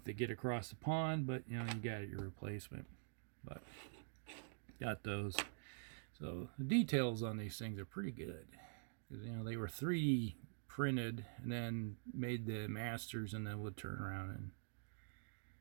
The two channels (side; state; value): left; silent; digital silence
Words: to get across the pond, but you got your replacement. But got those. So the details on these things are pretty good, because they were 3D printed and then made the masters, and then would turn around and